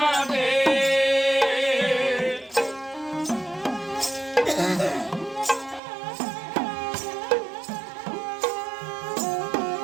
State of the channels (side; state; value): left; drops out; at 5.8 s